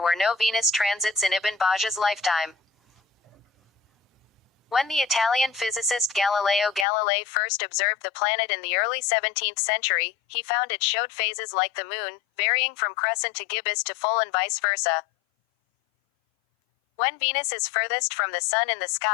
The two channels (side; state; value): right; drops out; at 6.9 s